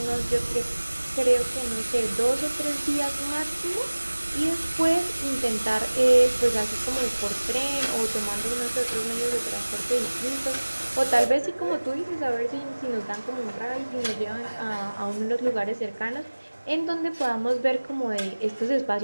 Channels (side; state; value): both; inverted; correlation -1.00